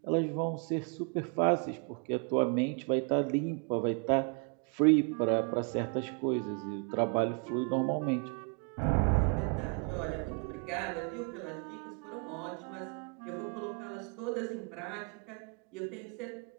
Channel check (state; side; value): quieter; left; 36.4 dB